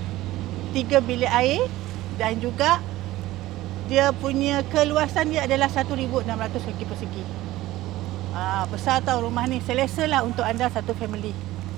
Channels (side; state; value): left; quieter; 16.5 dB